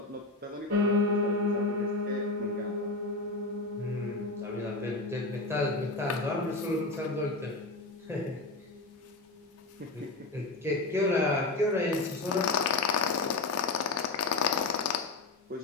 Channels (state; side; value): quieter; right; 3.2 dB